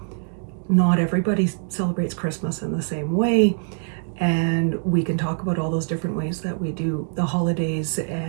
not everybody celebrates Christmas in the same way, and we can talk about all those different ways that we do the holidays,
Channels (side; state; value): left; silent; 63 dB below the other